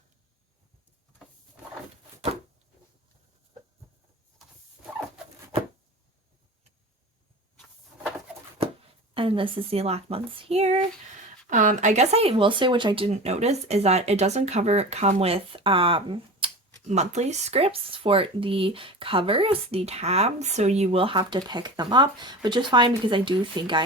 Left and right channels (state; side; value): normal; both; correlation 0.33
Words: And this is the last month's here. I guess I will say, which I didn't notice, is that it doesn't come with monthly scripts for the covers, the tabs, so you will have to pick them up, which is fine because I do think I